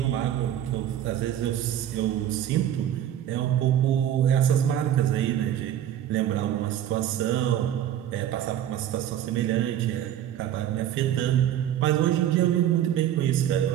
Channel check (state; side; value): quieter; left; 11.0 dB